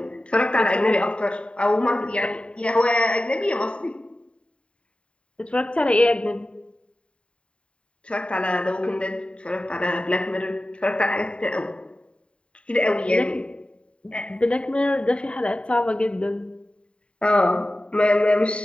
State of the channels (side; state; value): right; late; 0.057 ms